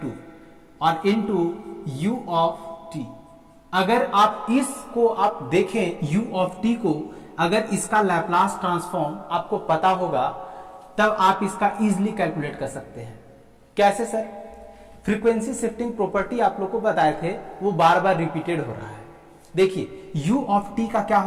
और इनटू यू ऑफ टी। अगर आप इसको आप देखें यू ऑफ टी को, अगर इसका लैप्लास ट्रांसफॉर्म आपको पता होगा तब आप इसका इजीली कैलकुलेट कर सकते हैं। कैसे सर, फ्रीक्वेंसी शिफ्टिंग प्रॉपर्टी आप लोग को बताए थे, वो बार बार रिपीटेड हो रहा है। देखिए u ऑफ t का क्या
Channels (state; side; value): identical; both; correlation 1.00